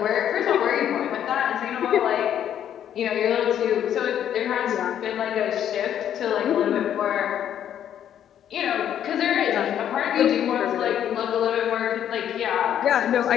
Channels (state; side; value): quieter; right; 10.1 dB